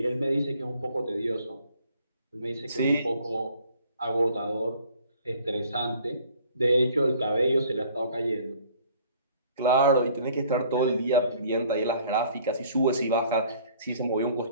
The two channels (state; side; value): inverted; both; correlation -0.55